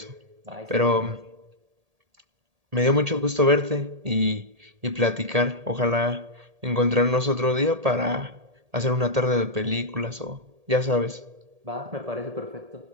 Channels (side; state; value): left; late; 1.8 ms